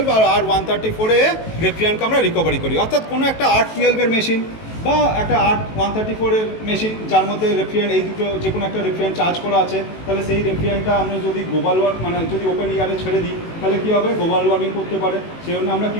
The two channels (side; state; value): right; late; 18 ms